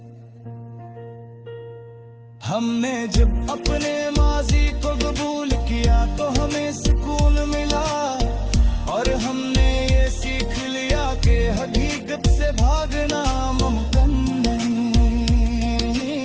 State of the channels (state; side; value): identical; both; correlation 1.00